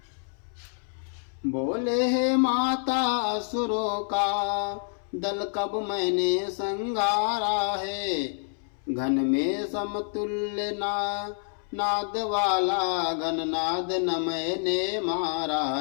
बोले है माता असुरों का दल कब मैंने संगारा है, घन में समतुल्य नाद वाला घननाद न मैंने मारा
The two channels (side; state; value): right; silent; 60 dB below the other